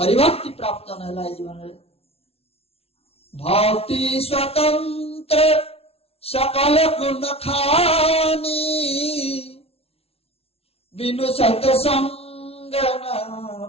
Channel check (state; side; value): late; right; 0.29 ms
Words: हरिभक्ति प्राप्त नहेला जीवन रे भक्ति स्वतंत्र सकल गुण खानी बिनु सत्संग न